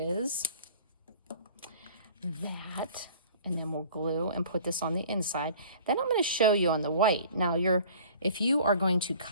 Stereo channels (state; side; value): inverted; both; correlation -0.48